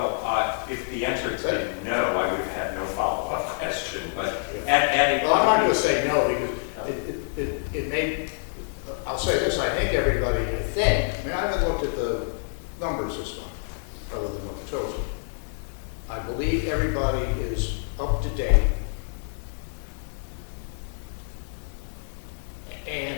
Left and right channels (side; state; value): right; silent; digital silence